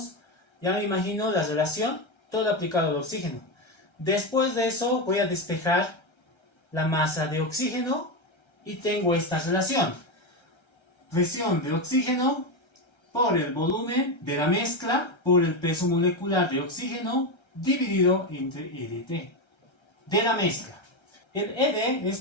ya me imagino la relación, todo aplicado al oxígeno. Después de eso voy a despejar la masa de oxígeno y tengo esta relación. Presión de oxígeno por el volumen de la mezcla por el peso molecular de oxígeno dividido entre EDT de la mezcla. El ED es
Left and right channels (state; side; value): late; right; 1.3 ms